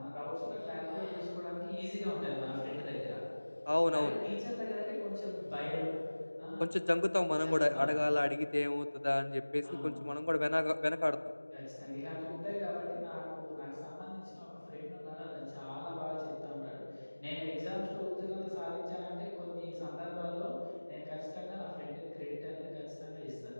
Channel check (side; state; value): both; inverted; correlation -1.00